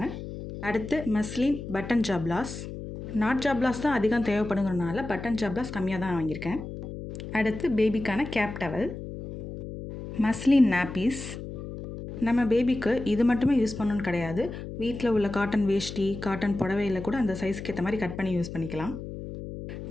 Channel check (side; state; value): left; noise; hum, 9 dB below the sound